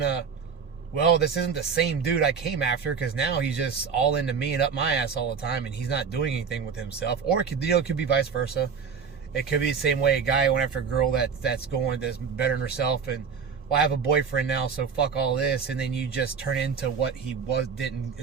well, this isn't the same dude I came after, because now he's just all into me and up my ass all the time, and he's not doing anything with himself. Or it could, it could be vice versa. It could be the same way a guy went after a girl that's bettering herself, and, well, I have a boyfriend now, so fuck all this, and then you just turn into what he didn't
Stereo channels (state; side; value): quieter; left; 6.1 dB